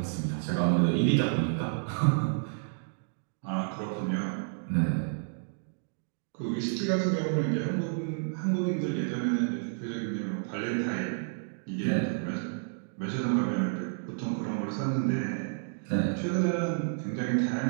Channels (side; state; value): left; silent; digital silence